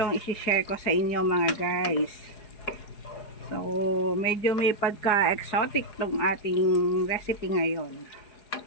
isi-share ko sa inyo mga guys. So medyo may pagka-exotic tong ating recipe ngayon.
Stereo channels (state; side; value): late; right; 4.8 ms